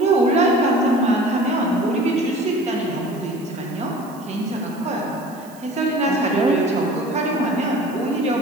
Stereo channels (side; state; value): right; noise; hiss, 24 dB below the sound